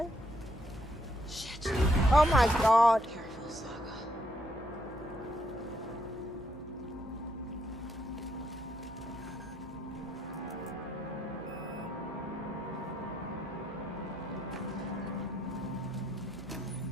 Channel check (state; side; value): normal; both; correlation 0.74